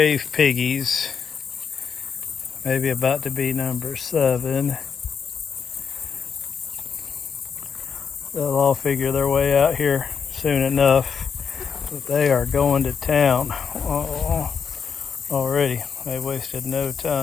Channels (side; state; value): right; quieter; 6.5 dB